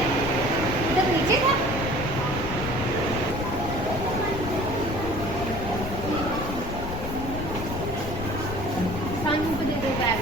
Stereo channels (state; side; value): noise; left; rumble, 6 dB below the sound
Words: इधर नीचे था सानू को दे दो बैग।